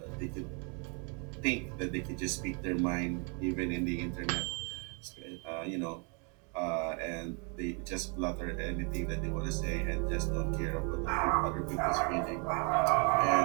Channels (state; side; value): quieter; left; 36.0 dB